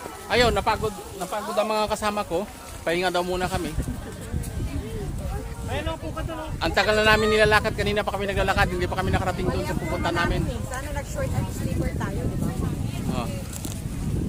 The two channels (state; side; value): identical; both; correlation 1.00